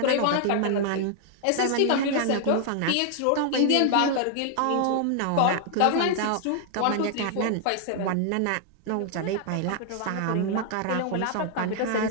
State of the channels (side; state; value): both; different; correlation 0.00